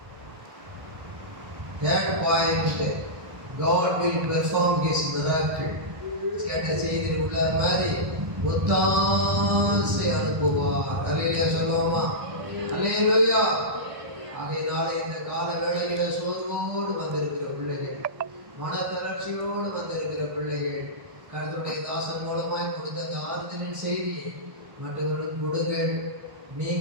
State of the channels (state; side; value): late; left; 1.3 ms